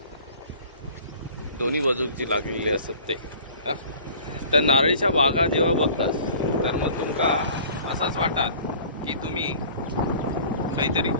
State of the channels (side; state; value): both; inverted; correlation -0.48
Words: दोन्ही बाजूक जी लागलेली असतात ते, त्या नारळीच्या बागा जेव्हा बघतात तर मग तुमका असंच वाटतात की तुम्ही काहीतरी